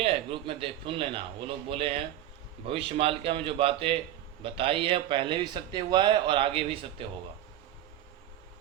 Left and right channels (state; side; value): quieter; left; 12.6 dB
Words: ग्रुप में देख सुन लेना। वो लोग बोले हैं भविष्य मालिका में जो बातें बताई है पहले भी सत्य हुआ है और आगे भी सत्य होगा।